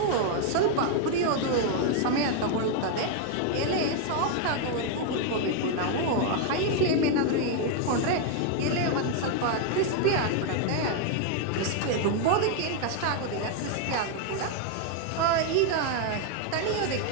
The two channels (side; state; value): both; different; correlation 0.00